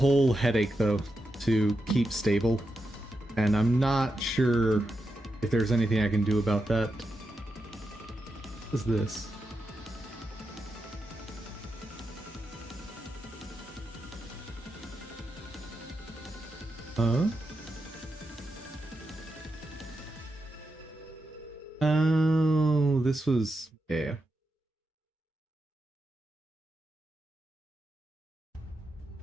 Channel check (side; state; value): both; normal; correlation 0.87